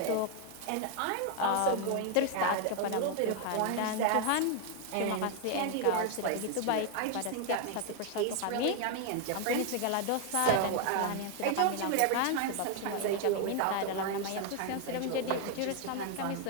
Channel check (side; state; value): both; different; correlation 0.01